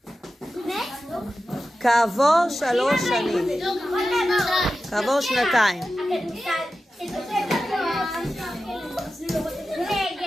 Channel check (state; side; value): normal; both; correlation 0.93